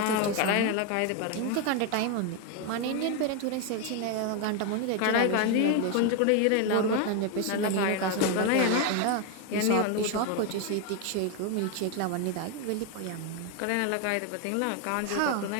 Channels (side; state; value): both; different; correlation 0.01